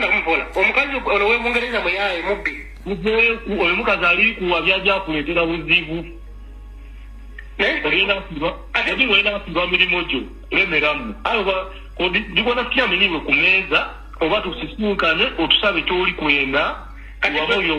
kumupola omukazi ono webungereza muyaye mubbi oyo mukazi ali kuwa byajja kuleetera buzibu ogenda kuba mirimu gyo lemeramu digona tukyamenyibwe ku meeza oba tusisinkane otusabe kyoli kwenda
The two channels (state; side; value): identical; both; correlation 1.00